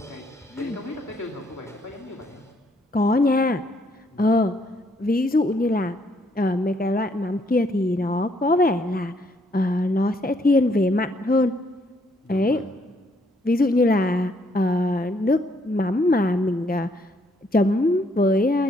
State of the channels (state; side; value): normal; both; correlation 0.70